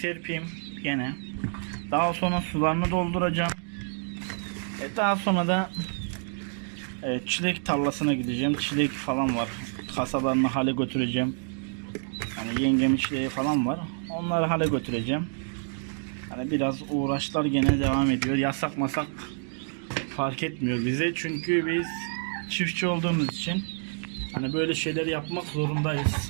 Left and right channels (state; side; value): silent; left; 59 dB below the other